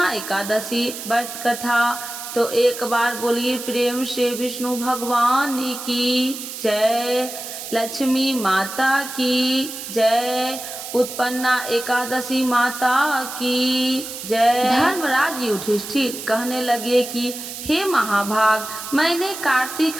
एकादशी व्रत कथा। तो एक बार बोलिए प्रेम से विष्णु भगवान की जय, लक्ष्मी माता की जय, उत्पन्ना एकादशी माता की जय। धर्मराज युधिष्ठिर कहने लगे कि हे महाभाग, मैंने कार्तिक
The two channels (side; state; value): right; noise; hiss, 9 dB below the sound